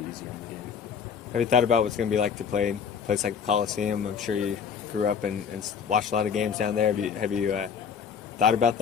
easier in the game. Have you thought about what's going to be like to play in a place like the Coliseum? I'm sure you grew up and watched a lot of games down there. Have you thought about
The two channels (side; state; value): right; quieter; 7.0 dB